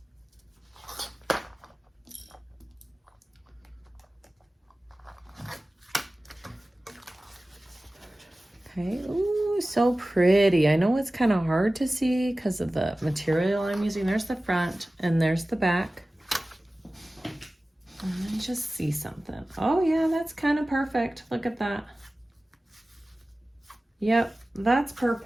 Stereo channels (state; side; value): normal; both; correlation 0.97